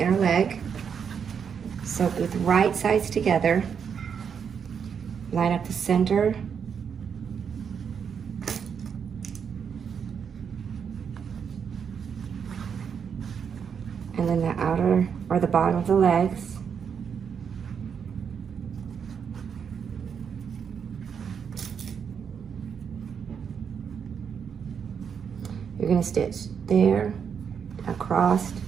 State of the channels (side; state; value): left; quieter; 7.1 dB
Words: leg. Sew with right sides together. Line up the center. And then the outer or the bottom of the legs. You're going to stitch there, across,